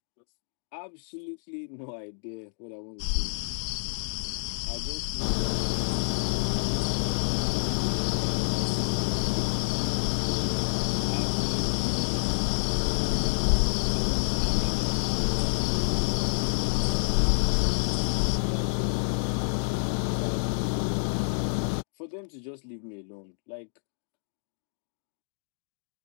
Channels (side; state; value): right; silent; digital silence